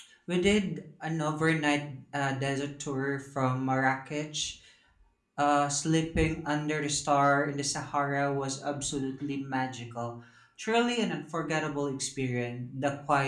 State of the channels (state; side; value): identical; both; correlation 1.00